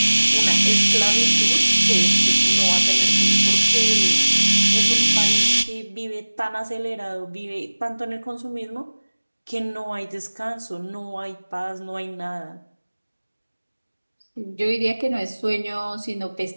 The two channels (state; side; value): inverted; both; correlation -1.00